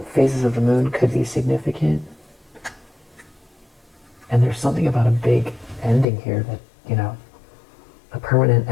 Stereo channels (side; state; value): right; drops out; at 6.1 s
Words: phases of the moon could be significant. And there's something about a big ending here that, you know, a permanent